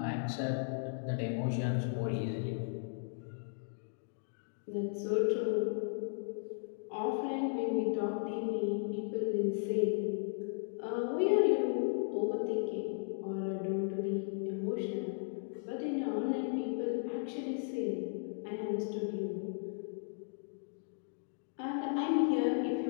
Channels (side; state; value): right; silent; digital silence